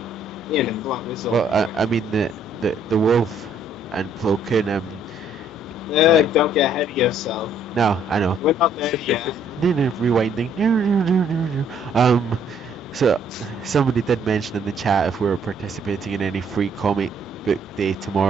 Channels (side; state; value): both; normal; correlation 0.64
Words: Well, I mean the wolf and Plo Koon. Don't get ahead of yourself. No, I know. We're not there yet. Rewinding. So somebody did mention in the chat if we were participating in any free comic book day